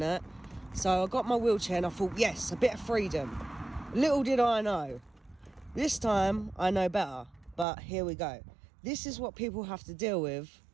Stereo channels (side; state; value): left; drops out; at 7.7 s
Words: that. So I got my wheelchair and I thought, yes, a bit of freedom. Little did I know. This time I know better, but here we go. This is what people have to deal with